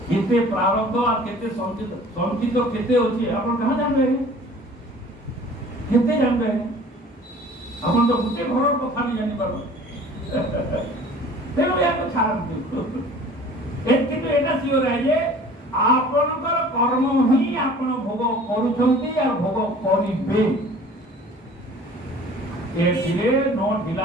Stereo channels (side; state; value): both; normal; correlation 0.47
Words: କେତେ ପ୍ରାରବ୍ଧ আর କେତେ ସଞ୍ଚିତ କେତେ ଅଛି ଆପଣ କାହା ଜାଣିବେ କେତେ ଜାଣିବେ ଆପଣ ତ ଗୋଟେ ଘରର କଥା ବି ଜାଣିପାର ତେଣୁ ଏହାକୁ ଛାଡ଼ନ୍ତୁ କିନ୍ତୁ ଏଇଟା ସିଓର ଯେ ଆପଣଙ୍କର କର୍ମ ହିଁ ଆପଣ ଭୋଗ କରୁଛନ୍ତି ଆଉ ଭୋଗ କରିବେ ଏଥିରେ ନ